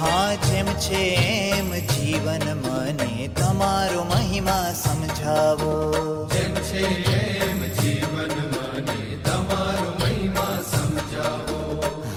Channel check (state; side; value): identical; both; correlation 1.00